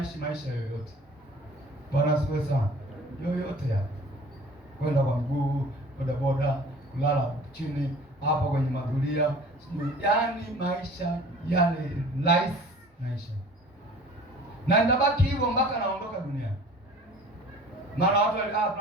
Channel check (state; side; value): normal; both; correlation 0.46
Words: maisha yoyote. Bwana asifiwe sana. Yoyote ya kwenda kwa mguu, boda boda, kulala chini hapo kwenye madhulia, yaani maisha yale life maisha, na nitabaki hivyo mpaka naondoka duniani. Maana watu